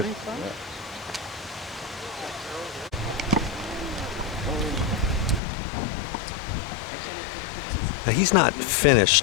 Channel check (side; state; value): right; drops out; at 5.4 s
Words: Now he's not